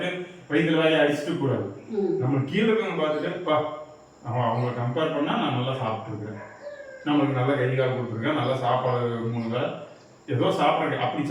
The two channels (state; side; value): identical; both; correlation 1.00